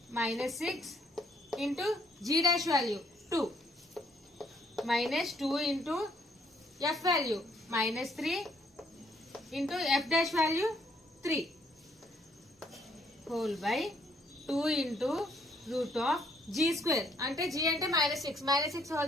minus 6 into g dash value 2 minus 2 into f value minus 3 into f dash value 3 whole by 2 into root of g square అంటే g అంటే minus 6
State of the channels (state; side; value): normal; both; correlation 0.68